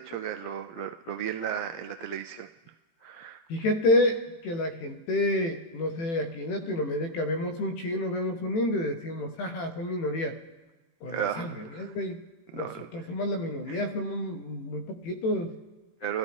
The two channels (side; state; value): right; late; 18 ms